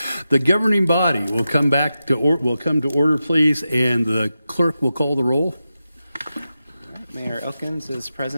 The governing body will come to order, please, and the clerk will call the roll. Mayor Elkins is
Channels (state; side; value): inverted; both; correlation -0.91